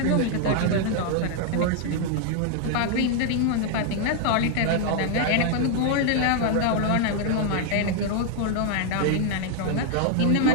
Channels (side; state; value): both; different; correlation 0.00